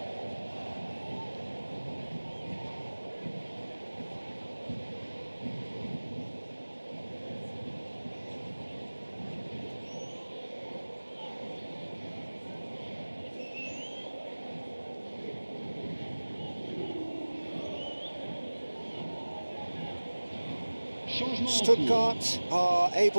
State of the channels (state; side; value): inverted; both; correlation -1.00